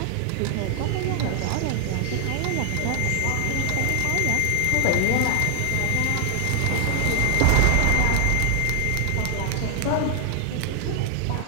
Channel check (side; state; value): both; different; correlation 0.00